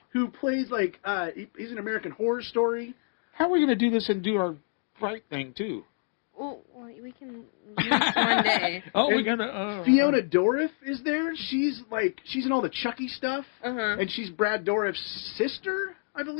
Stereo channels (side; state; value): right; silent; 59 dB below the other